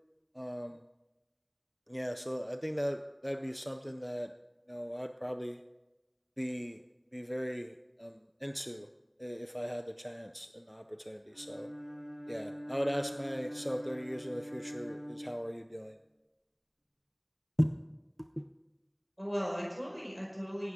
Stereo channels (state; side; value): identical; both; correlation 1.00